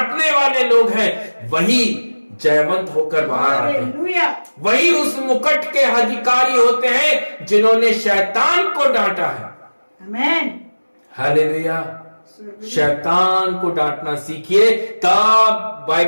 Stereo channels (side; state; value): both; inverted; correlation -1.00